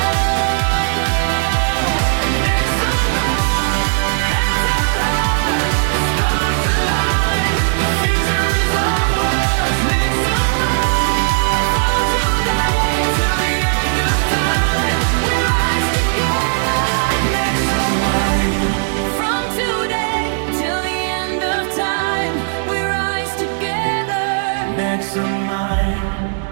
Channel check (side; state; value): left; silent; digital silence